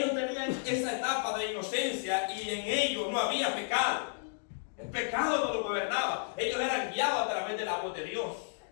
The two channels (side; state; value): right; silent; digital silence